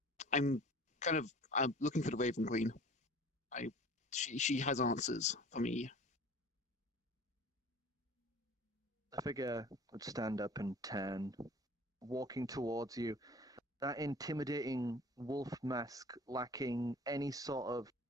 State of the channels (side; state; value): both; normal; correlation 0.45